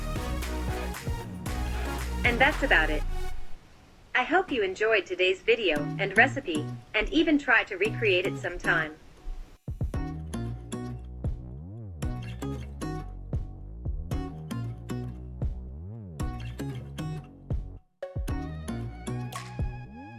And that's about it. I hope you enjoyed today's video and recipe, and even try to recreate it sometime.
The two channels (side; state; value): both; identical; correlation 1.00